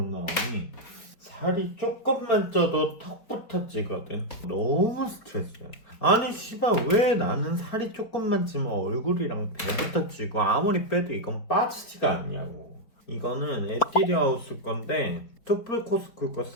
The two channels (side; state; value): right; late; 4.7 ms